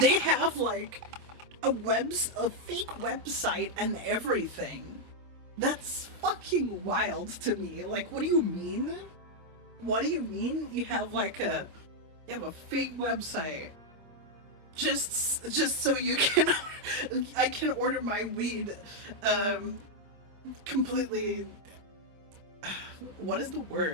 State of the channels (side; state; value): left; late; 25 ms